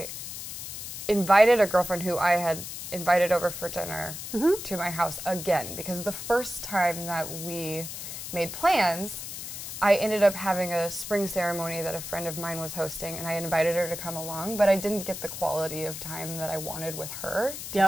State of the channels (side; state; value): left; noise; hiss, 8 dB below the sound